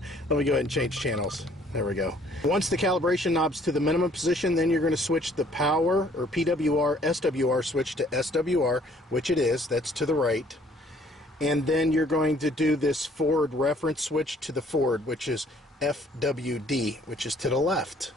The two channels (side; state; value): both; normal; correlation 0.60